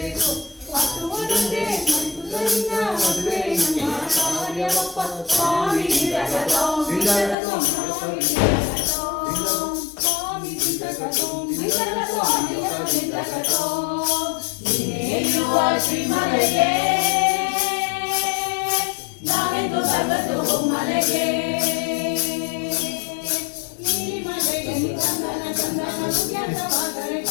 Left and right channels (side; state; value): right; drops out; at 7.4 s